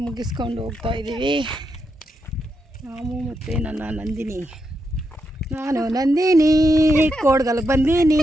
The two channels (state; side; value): normal; both; correlation 0.83